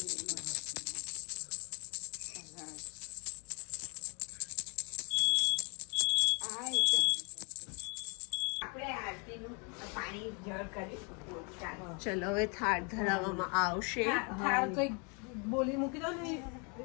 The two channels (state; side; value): quieter; right; 34.6 dB